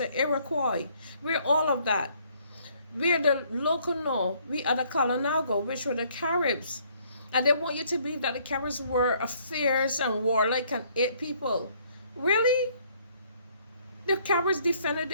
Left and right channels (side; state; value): both; inverted; correlation -0.64